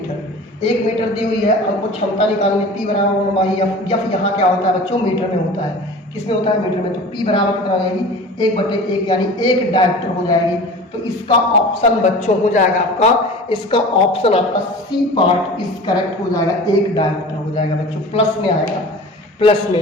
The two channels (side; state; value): both; normal; correlation 0.38